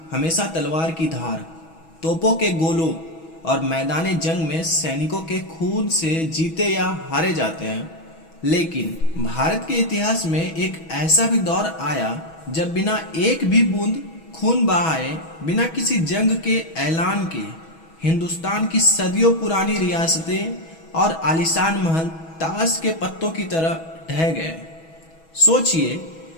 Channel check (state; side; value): late; right; 6.2 ms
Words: हमेशा तलवार की धार, तोपों के गोलों और मैदान जंग में सैनिकों के खून से जीते या हारे जाते हैं। लेकिन भारत के इतिहास में एक ऐसा भी दौर आया जब बिना एक भी बूंद खून बहाए, बिना किसी जंग के ऐलान के, हिंदुस्तान की सदियों पुरानी रियासतें और आलीशान महल ताश के पत्तों की तरह ढह गए। सोचिए,